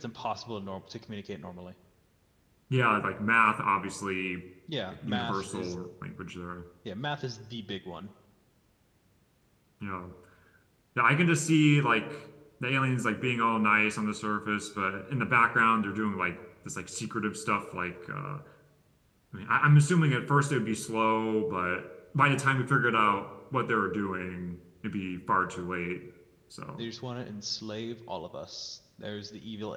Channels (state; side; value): identical; both; correlation 1.00